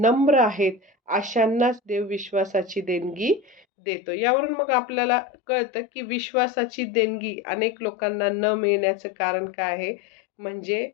आहेत, अशांनाच देव विश्वासाची देणगी देतो. यावरून मग आपल्याला कळतं, की विश्वासाची देणगी अनेक लोकांना न मिळण्याचं कारण काय आहे? म्हणजे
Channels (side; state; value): right; drops out; at 3.7 s